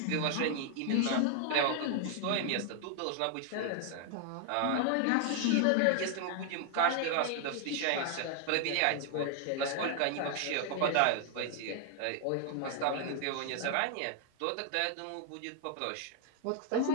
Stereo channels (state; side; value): different; both; correlation 0.00